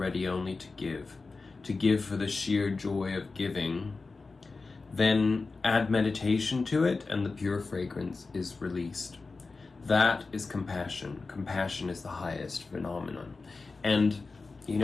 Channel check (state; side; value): quieter; right; 4.0 dB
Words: only to give for the sheer joy of giving, then add meditation to it and the pure fragrance is released. That is compassion. Compassion is the highest phenomenon. And you